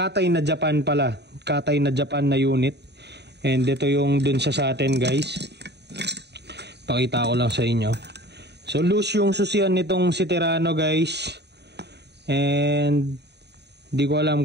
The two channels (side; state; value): left; late; 0.49 ms